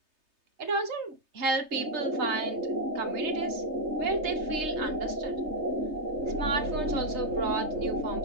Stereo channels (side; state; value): left; late; 3.3 ms